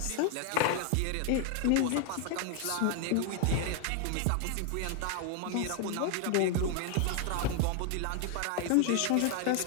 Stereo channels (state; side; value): different; both; correlation 0.01